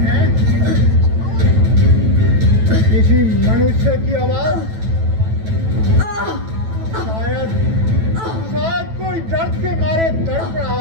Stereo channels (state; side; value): late; left; 9.1 ms